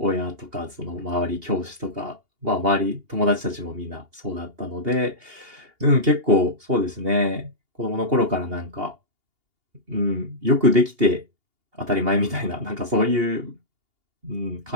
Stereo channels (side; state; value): left; late; 2.8 ms